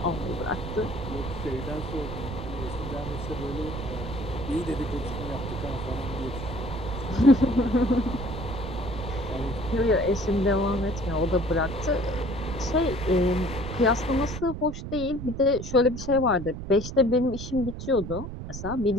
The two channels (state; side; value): noise; right; rumble, 8 dB below the sound